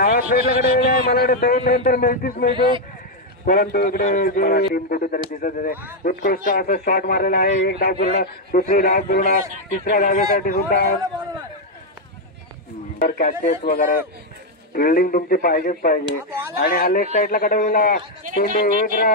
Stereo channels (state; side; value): normal; both; correlation 0.02